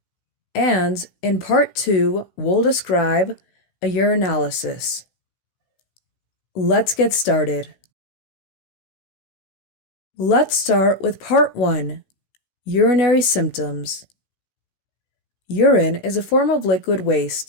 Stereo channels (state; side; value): late; right; 16 ms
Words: And in part 2, we'll describe a urinalysis. Let's get started. Let's start with part 1, urinary symptoms. Urine is a form of liquid